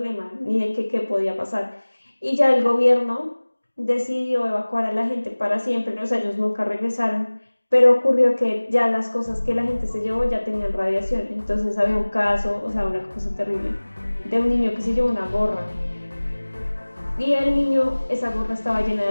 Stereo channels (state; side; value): inverted; both; correlation -1.00